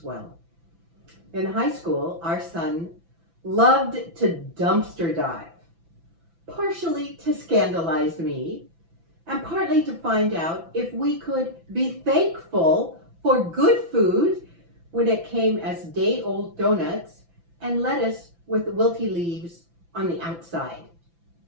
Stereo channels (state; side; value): late; left; 5.9 ms